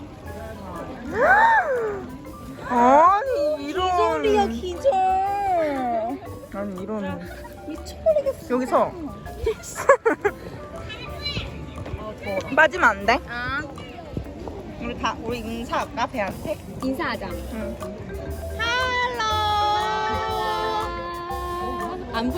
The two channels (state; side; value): identical; both; correlation 1.00